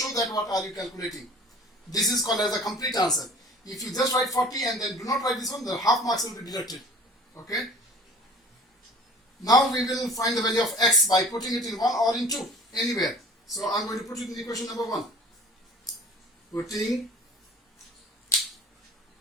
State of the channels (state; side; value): normal; both; correlation 0.47